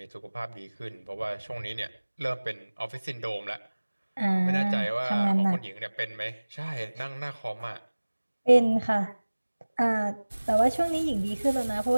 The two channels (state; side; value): inverted; both; correlation -1.00